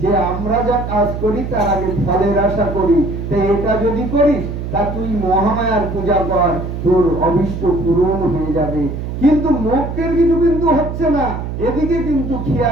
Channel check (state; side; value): noise; right; hum, 6 dB below the sound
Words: যে আমরা যা কাজ করি তার আগে ফলের আশা করি, তো এটা যদি করিস তা তুই মহামায়ার পূজা কর, তোর অভিষ্ট পূরণ হয়ে যাবে। কিন্তু মোক্ষের কিছু কিন্তু হচ্ছে না, এদিকে কিন্তু